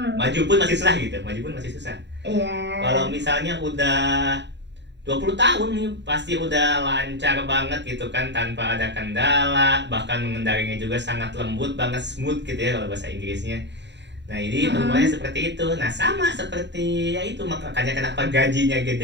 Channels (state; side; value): late; left; 0.51 ms